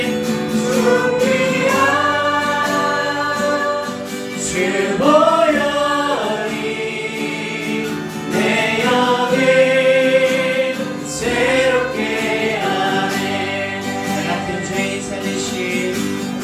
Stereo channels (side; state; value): both; identical; correlation 1.00